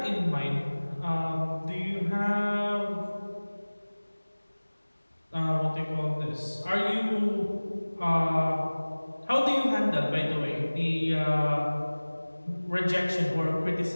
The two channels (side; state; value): both; inverted; correlation -1.00